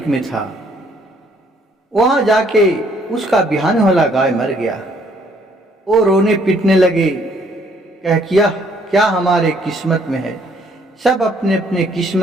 में था। वहां जाके उसका बिहान होला गाय मर गया। वो रोने पीटने लगे, कह किया क्या हमारे किस्मत में है, सब अपने अपने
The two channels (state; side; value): normal; both; correlation 0.65